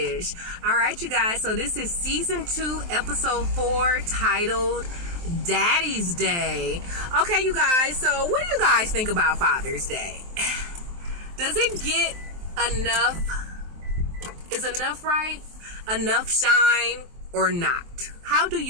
All right, you guys, so this is season 2, episode 4, titled Daddy's Day. Okay, you guys, so what do you guys think about Father's Day? Does it get enough? Is enough right? Enough shine or not? How do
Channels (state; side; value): late; left; 23 ms